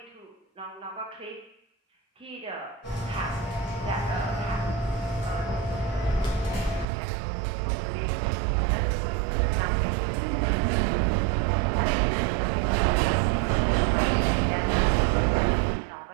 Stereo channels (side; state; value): left; drops out; at 6.9 s